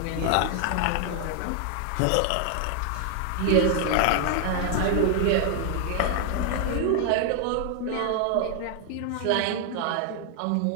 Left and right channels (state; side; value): different; both; correlation 0.00